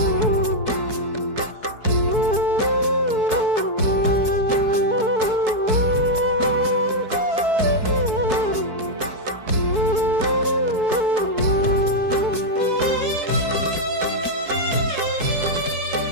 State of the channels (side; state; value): left; late; 4.6 ms